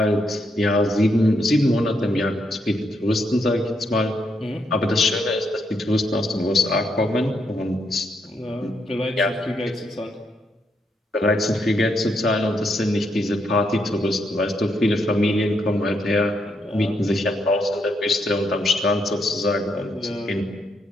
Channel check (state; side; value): normal; both; correlation 0.78